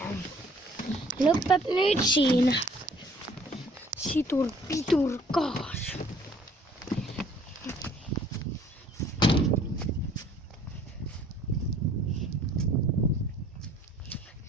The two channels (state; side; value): normal; both; correlation 0.57